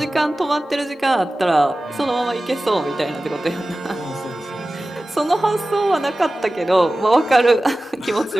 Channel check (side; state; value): both; normal; correlation 0.96